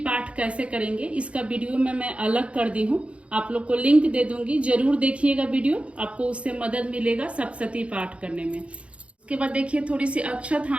कैसे करेंगे इसका वीडियो में मैं अलग कर दी हूँ, आप लोग को लिंक दे दूंगी, जरूर देखिएगा वीडियो, आपको उससे मदद मिलेगा सप्तशती पाठ करने में। उसके बाद देखिए थोड़ी सी अक्षत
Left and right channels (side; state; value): left; late; 0.061 ms